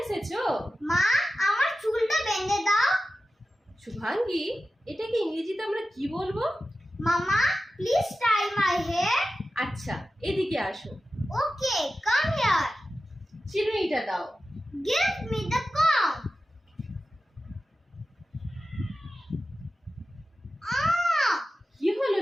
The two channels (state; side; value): normal; both; correlation 0.93